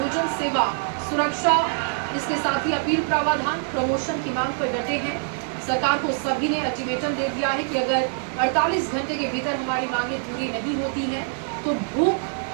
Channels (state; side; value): silent; left; 62 dB below the other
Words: सेवा, सुरक्षा, इसके साथ ही अपील प्रावधान, प्रमोशन की मांग पर डटे हैं। सरकार को सभी ने अल्टीमेटम दे दिया है कि अगर 48 घंटे के भीतर हमारी मांगे पूरी नहीं होती हैं तो